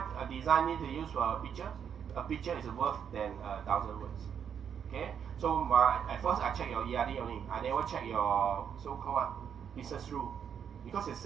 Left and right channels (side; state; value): left; quieter; 8.0 dB